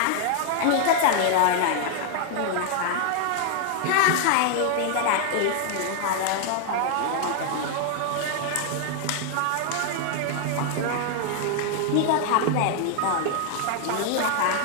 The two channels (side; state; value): both; different; correlation 0.00